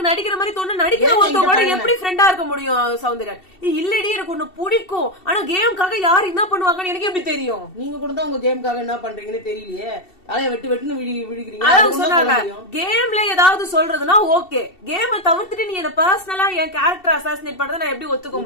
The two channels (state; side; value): late; right; 2.7 ms